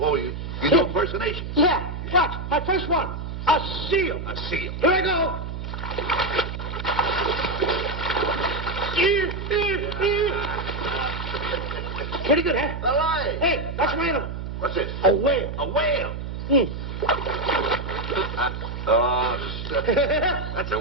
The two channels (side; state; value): right; noise; hum, 6 dB below the sound